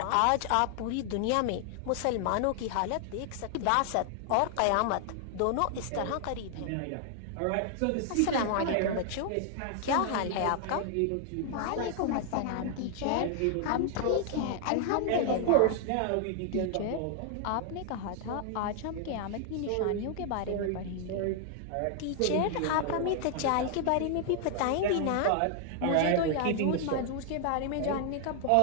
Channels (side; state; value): both; different; correlation 0.00